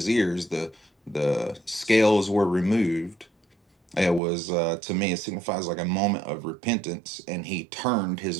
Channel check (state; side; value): drops out; left; at 4.2 s